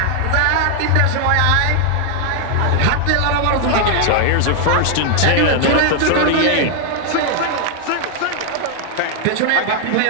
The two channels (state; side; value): different; both; correlation 0.00